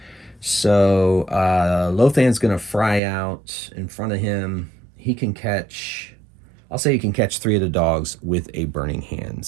So Lothan's going to fry out in front of him. He can catch, I'll say he can catch 3 of the dogs with a Burning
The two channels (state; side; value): drops out; left; at 3.0 s